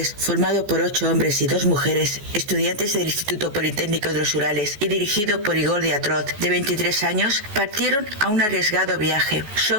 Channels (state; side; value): late; left; 14 ms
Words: formado por 8 hombres y 2 mujeres, estudiantes del Instituto Politécnico de los Urales y dirigido por Igor Diatrov, de 23 años, partieron a un arriesgado viaje. Su